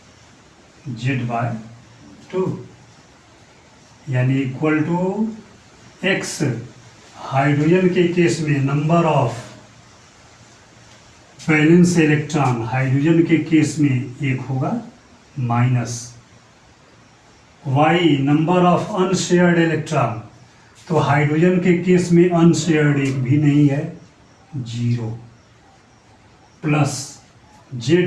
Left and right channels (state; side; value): identical; both; correlation 1.00